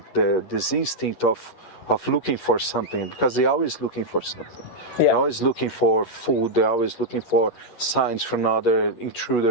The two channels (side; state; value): right; late; 11 ms